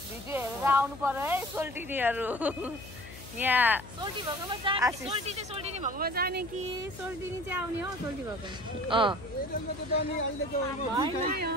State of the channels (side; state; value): left; noise; hum, 15 dB below the sound